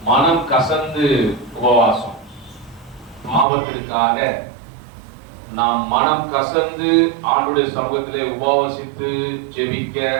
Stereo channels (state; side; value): drops out; left; at 3.5 s